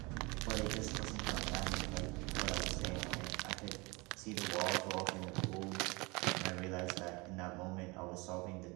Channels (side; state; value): left; quieter; 25.9 dB